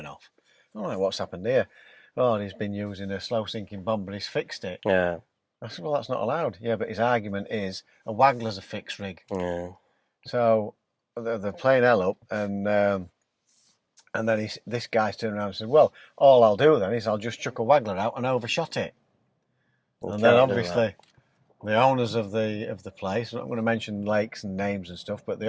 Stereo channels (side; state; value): both; identical; correlation 1.00